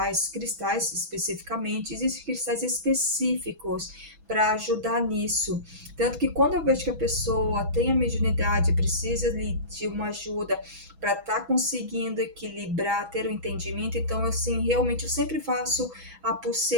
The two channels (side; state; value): left; late; 6.1 ms